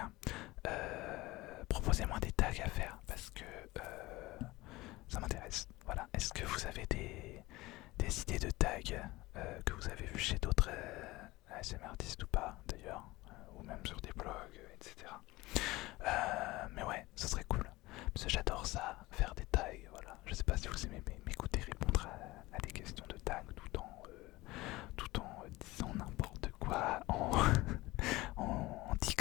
proposez-moi des tags à faire parce que ça m'intéresse. Voilà. Est-ce que vous avez des idées de tags que vous avez vu chez d'autres ASMR artistes ou pas d'ailleurs, ou même sur des blogs, etc. Mais ouais, ça serait cool. Parce que j'adore ça, faire des tags. Voilà. Je sais pas si vous aimez m'écouter répondre à des questions de tags tout en disant n'importe quoi, en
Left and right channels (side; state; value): right; quieter; 19.9 dB